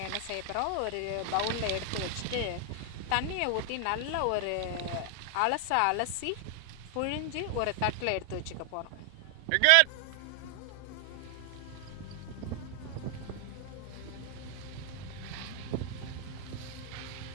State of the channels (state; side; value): different; both; correlation 0.00